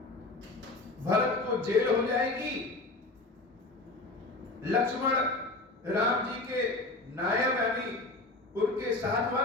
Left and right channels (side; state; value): right; quieter; 3.0 dB